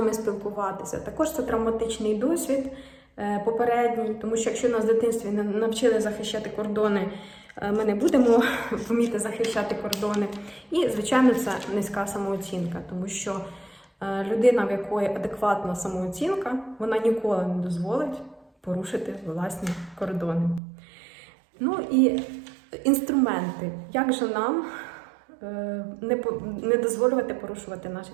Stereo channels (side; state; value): left; drops out; at 20.6 s